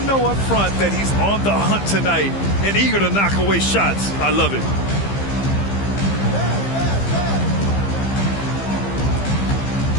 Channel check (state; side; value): late; right; 15 ms